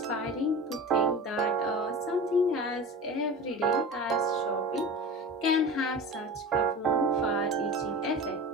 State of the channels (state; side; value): normal; both; correlation 0.33